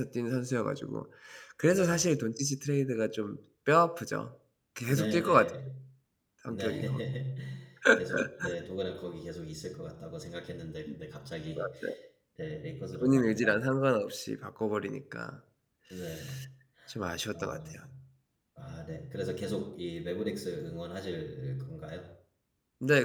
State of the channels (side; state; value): both; identical; correlation 1.00